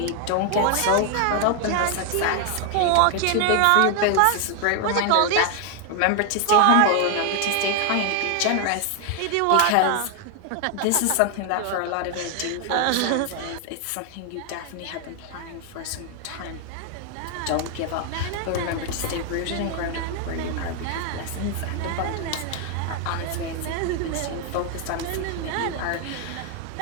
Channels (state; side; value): different; both; correlation 0.00